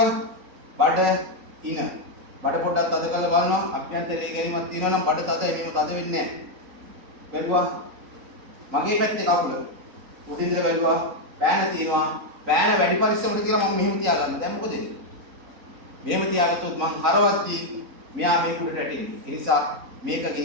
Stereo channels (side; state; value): left; late; 3.9 ms